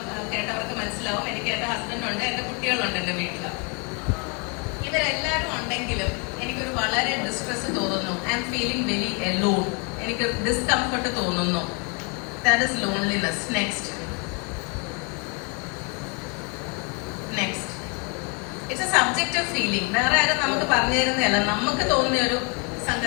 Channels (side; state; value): right; quieter; 34.2 dB